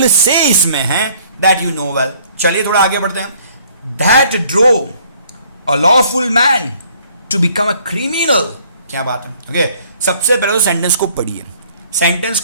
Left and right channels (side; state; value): both; inverted; correlation -0.60